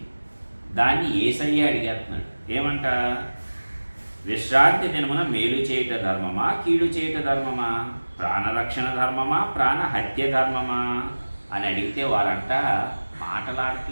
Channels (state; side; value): inverted; both; correlation -1.00